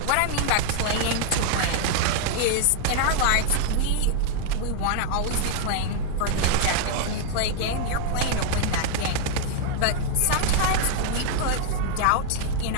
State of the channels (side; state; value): both; different; correlation 0.00